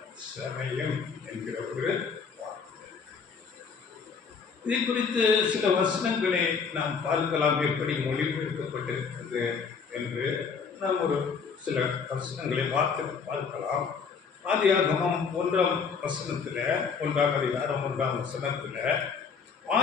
சமயம் என்கிற ஒரு வார்த்தை. இதை குறித்து சில வசனங்களை நாம் பார்க்கலாம், எப்படி மொழிபெயர்க்கப்பட்டிருக்கிறது என்று நாம் ஒரு சில வசனங்களை பார்க்கலாம். ஆதியாகமம் 1ஆம் வசனத்தில், 1ஆம் அதிகாரம் 1ஆம் வசனத்தில்,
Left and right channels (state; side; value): quieter; right; 5.8 dB